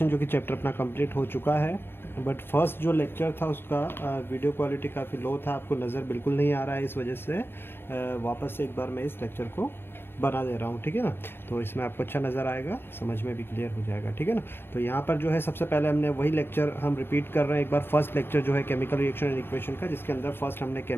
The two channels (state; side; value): late; right; 0.10 ms